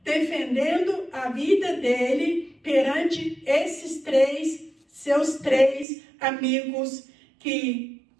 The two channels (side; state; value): left; drops out; at 5.9 s